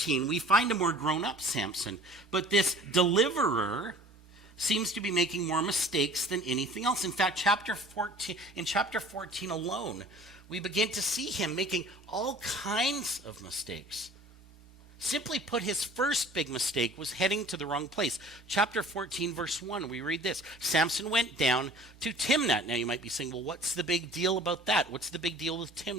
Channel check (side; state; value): both; normal; correlation 0.47